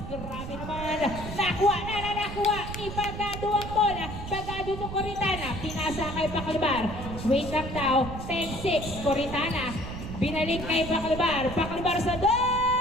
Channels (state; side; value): noise; right; rumble, 8 dB below the sound